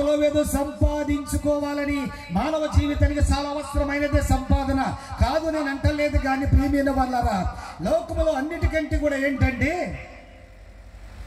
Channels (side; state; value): both; identical; correlation 1.00